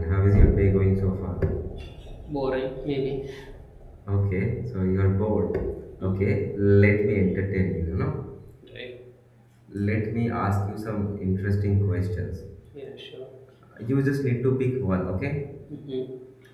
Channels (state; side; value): identical; both; correlation 1.00